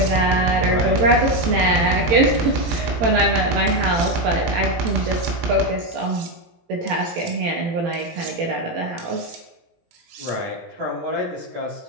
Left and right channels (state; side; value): late; left; 18 ms